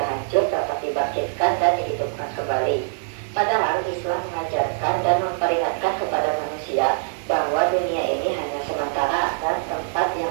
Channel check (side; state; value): left; silent; digital silence